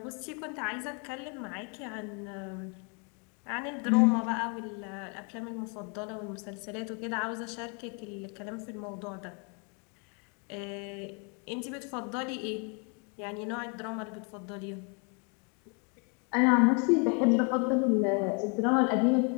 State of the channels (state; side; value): quieter; right; 36.4 dB